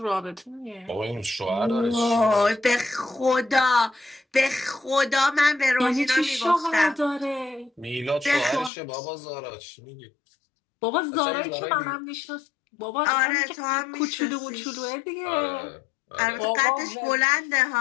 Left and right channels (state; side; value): drops out; right; at 8.7 s